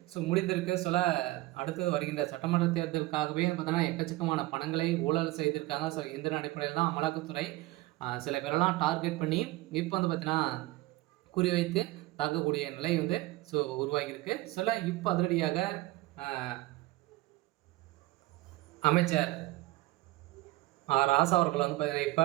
ஸோ முடிந்திருக்கு. சொல்ல அடுத்து வருகின்ற சட்டமன்ற தேர்தலுக்காகவே பார்த்தீங்கன்னா எக்கச்சக்கமான பணங்களை ஊழல் செய்திருக்காங்க. ஸோ இந்த அடிப்படையில் தான் அமலாக்கத்துறை சில பேரெல்லாம் டார்கெட் பண்ணி இப்போ பார்த்தீங்கன்னா குறிவைத்து தாக்கக்கூடிய நிலை ஸோ உருவாகியிருக்கு. சொல்ல இப்போ அதிரடியாக அமைச்சர் ராசா அவர்கள் பார்த்தீங்கன்னா இப்போ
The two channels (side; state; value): left; quieter; 18.9 dB